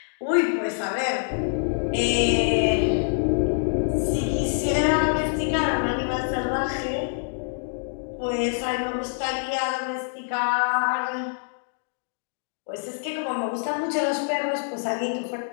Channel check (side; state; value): right; silent; digital silence